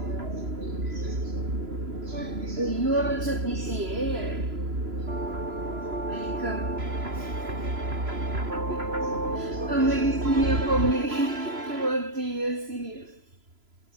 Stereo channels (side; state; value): left; late; 3.0 ms